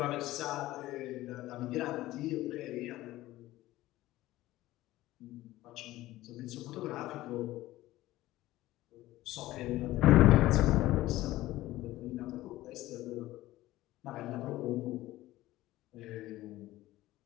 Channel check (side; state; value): right; quieter; 16.5 dB